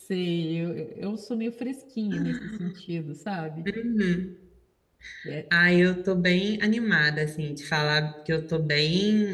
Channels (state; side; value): identical; both; correlation 1.00